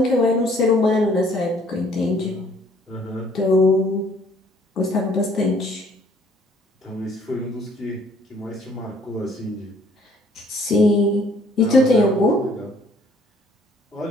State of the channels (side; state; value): both; normal; correlation 0.60